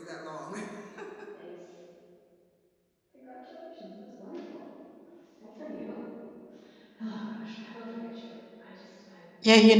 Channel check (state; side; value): identical; both; correlation 1.00